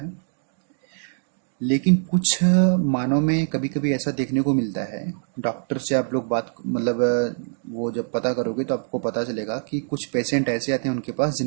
लेकिन कुछ मानव में कभी कभी ऐसा देखने को मिलता है। डॉक्टर से आप लोग बात मतलब वो जब पता करोगे तो आपको पता चलेगा कि कुछ पेशेंट ऐसे आते हैं उनके पास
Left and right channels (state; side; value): silent; left; digital silence